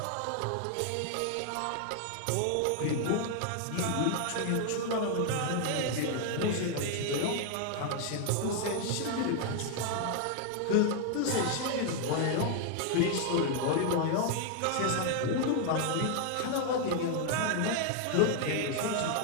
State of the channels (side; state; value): both; different; correlation 0.00